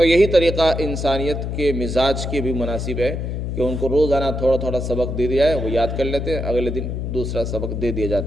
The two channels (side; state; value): left; noise; hum, 3 dB below the sound